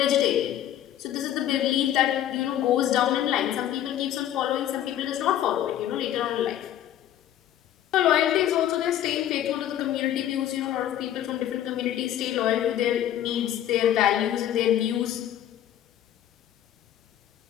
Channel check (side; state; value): right; quieter; 11.6 dB